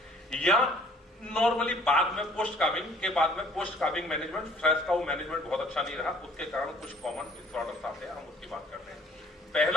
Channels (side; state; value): both; normal; correlation 0.56